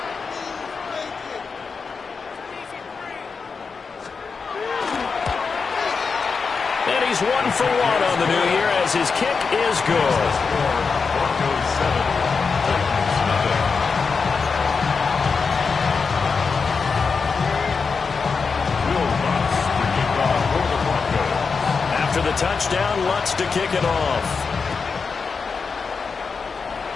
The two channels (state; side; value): quieter; right; 5.1 dB